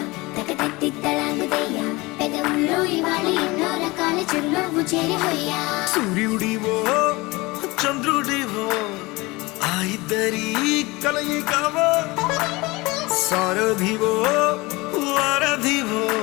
తకతత్తిత్తలాంగుదయ్య పెదవుల్లో ఇవాళ ఎన్నో రకాల చిరునవ్వు చేరి హొయ్యా సూర్యుడివో చంద్రుడివో ఆ ఇద్దరి కలయికవో సారథివో వారధివో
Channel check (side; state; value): right; quieter; 22.9 dB